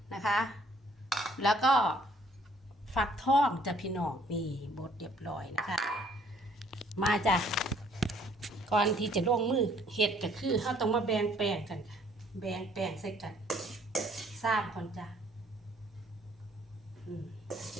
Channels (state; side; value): normal; both; correlation 0.62